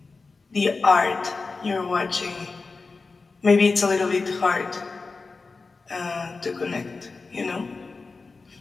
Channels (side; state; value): right; quieter; 4.1 dB